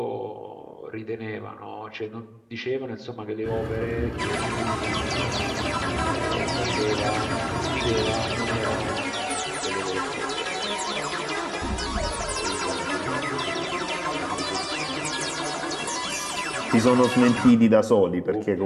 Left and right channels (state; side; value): identical; both; correlation 1.00